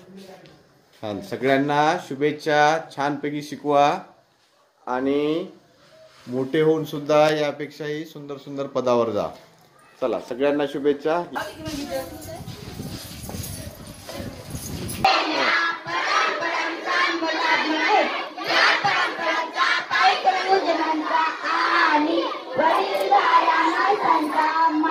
सगळ्यांना शुभेच्छा, छानपैकी शिकवा आणि मोठे होऊन सुद्धा यापेक्षाही सुंदर सुंदर पदावर जा। चला सगळ्यांना शुभेच्छा।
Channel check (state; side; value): identical; both; correlation 1.00